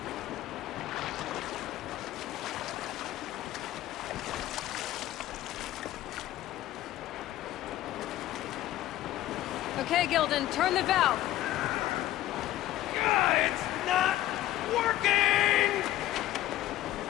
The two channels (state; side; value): quieter; right; 14.5 dB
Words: Okay, Gilden, turn the valve. It's not working!